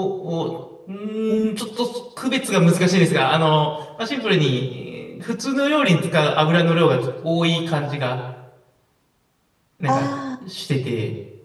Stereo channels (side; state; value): both; identical; correlation 1.00